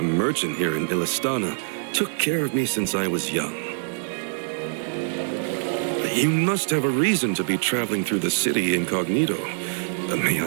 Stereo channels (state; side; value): silent; left; digital silence